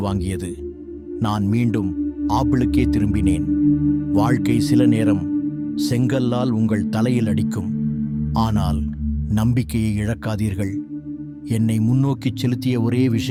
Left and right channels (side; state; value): both; identical; correlation 1.00